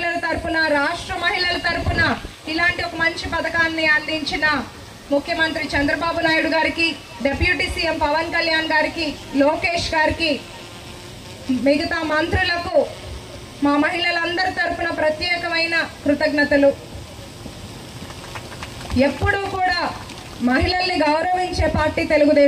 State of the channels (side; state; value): both; identical; correlation 1.00